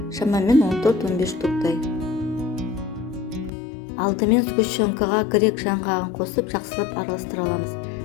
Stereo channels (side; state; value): right; drops out; at 3.5 s